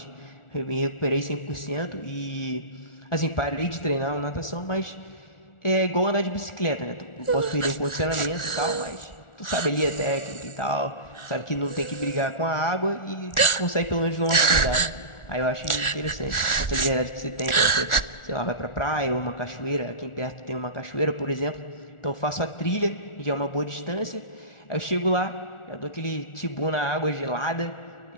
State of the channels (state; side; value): late; right; 1.4 ms